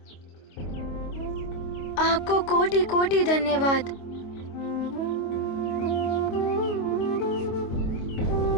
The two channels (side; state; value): right; late; 25 ms